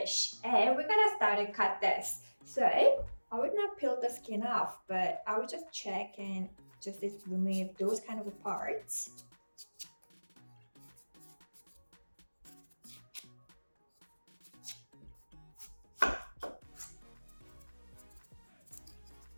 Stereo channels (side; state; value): both; inverted; correlation -1.00